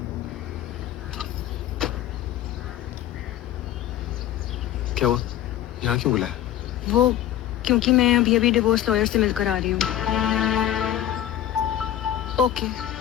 क्या हुआ? यहाँ क्यों बुलाया? वो क्योंकि मैं अभी अभी डिवोर्स लॉयर से मिलकर आ रही हूँ। ओके,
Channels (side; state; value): right; quieter; 11.8 dB